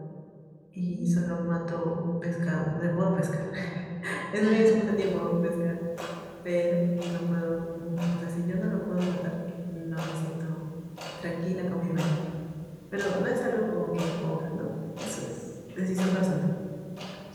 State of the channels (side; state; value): both; identical; correlation 1.00